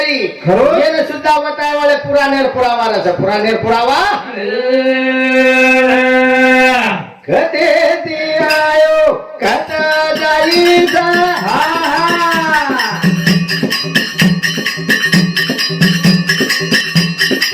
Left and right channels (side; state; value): both; identical; correlation 1.00